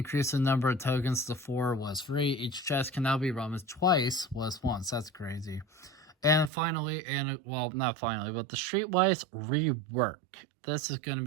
the number of tokens to 4 was free. Each chest can now be run twice was once. That's crazy. And finally, well, not finally, but the Streetwise rework. This is going to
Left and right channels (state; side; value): drops out; left; at 6.5 s